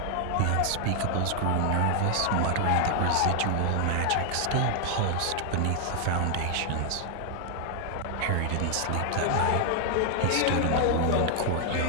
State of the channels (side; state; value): both; different; correlation 0.00